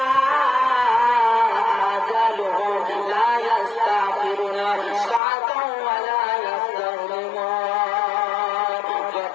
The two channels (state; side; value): drops out; right; at 5.2 s